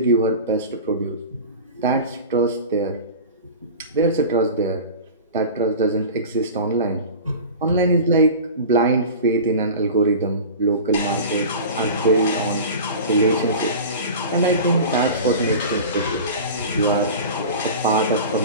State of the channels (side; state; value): both; inverted; correlation -0.34